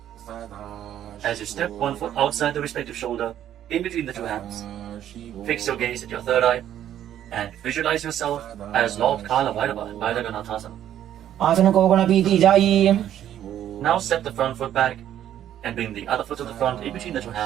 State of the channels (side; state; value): left; quieter; 11.1 dB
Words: As you step one foot outside the respective shoulder in between the two hands, fix your gaze at your third eye and visualize yourself as Lord Kala Bhairava in Bhairaganathasana. आसन को गुण पीती जाई. Now step the front foot back and bring the other foot to the front in between the two